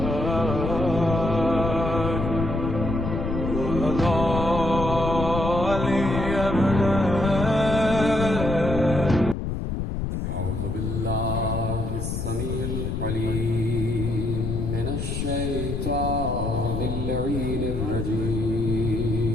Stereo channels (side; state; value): left; noise; rumble, 3 dB below the sound